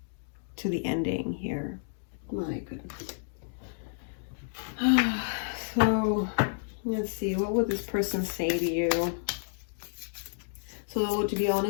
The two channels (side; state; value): right; silent; digital silence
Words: to the ending here. My goodness. So let's see, what would this person say to you? So to be